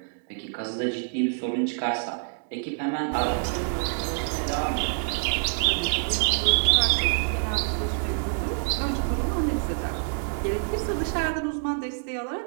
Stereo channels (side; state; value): left; silent; digital silence